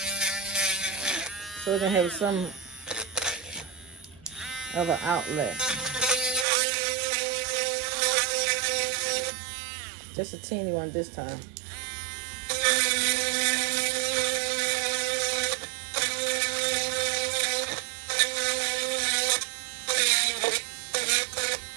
So it can have some of an outlet. Just a teeny one this time.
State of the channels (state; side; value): drops out; left; at 6.5 s